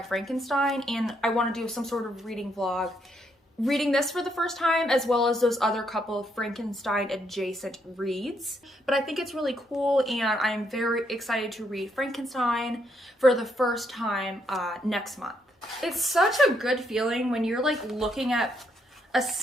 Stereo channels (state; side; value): normal; both; correlation 0.75